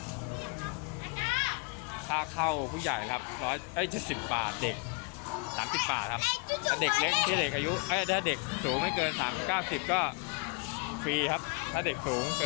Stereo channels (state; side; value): quieter; right; 32.7 dB